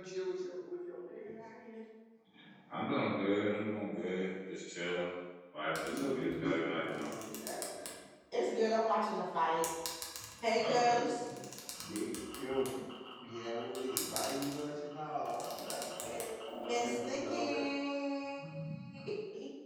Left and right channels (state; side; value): identical; both; correlation 1.00